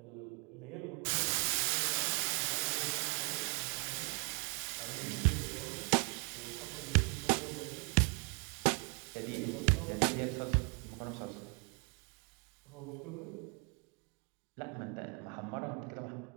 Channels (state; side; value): quieter; left; 34.1 dB